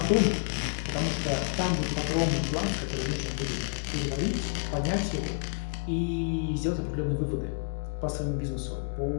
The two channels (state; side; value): silent; right; digital silence